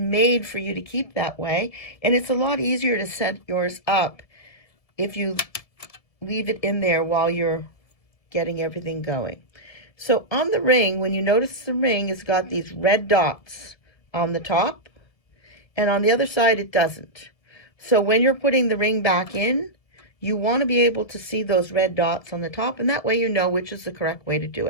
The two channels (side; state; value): right; late; 1.7 ms